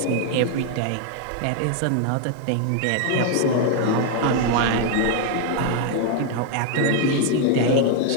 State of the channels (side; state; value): both; different; correlation 0.00